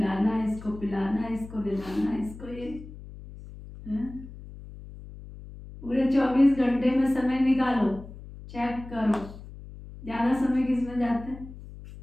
इसको पिलाना, इसको दिलाना, इसको ये हैं? पूरे 24 घंटे में समय निकालो, चेक करो, ज्यादा समय किसमें जाता है?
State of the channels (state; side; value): noise; left; hum, 15 dB below the sound